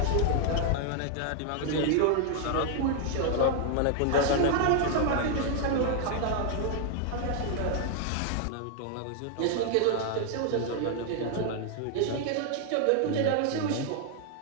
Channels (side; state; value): both; different; correlation 0.00